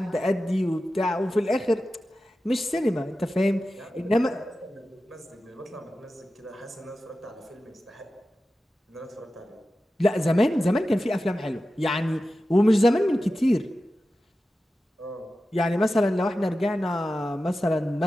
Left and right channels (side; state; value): both; normal; correlation 0.93